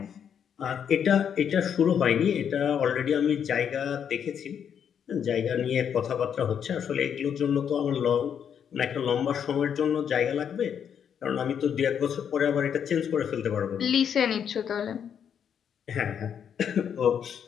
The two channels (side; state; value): right; quieter; 8.1 dB